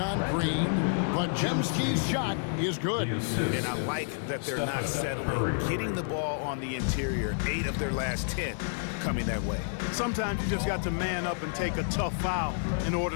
on Green. Podziemski's shot is good. And I like that they're not settling. Getting the ball on the interior, 8 of their last 10 coming that way. Sometimes you just got to man up and take a tough foul in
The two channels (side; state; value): right; silent; 58 dB below the other